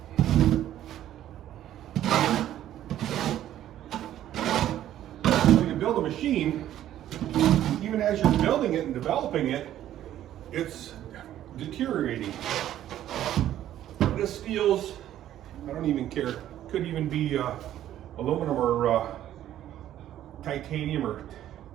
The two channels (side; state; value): left; quieter; 12.1 dB